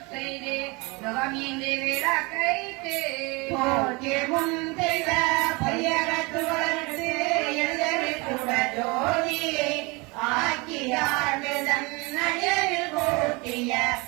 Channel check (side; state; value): left; quieter; 26.9 dB